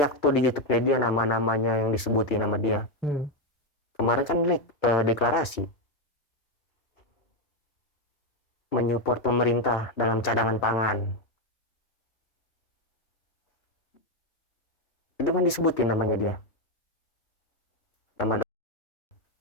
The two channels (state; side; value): normal; both; correlation 0.06